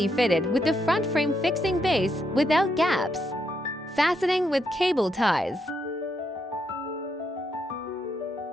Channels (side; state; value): both; normal; correlation 0.79